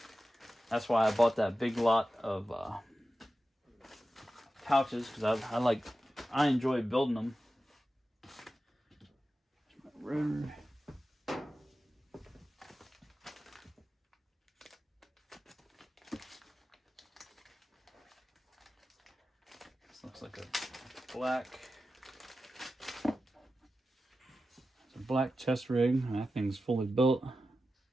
that's why I bought that big lot of pouches, because I enjoy building them. Rotor. This looks like a black chest rig. That thing's fully built.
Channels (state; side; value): normal; both; correlation 0.93